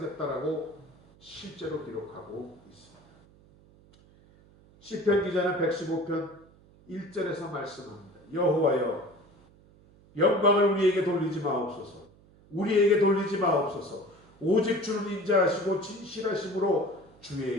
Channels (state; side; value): noise; right; hum, 27 dB below the sound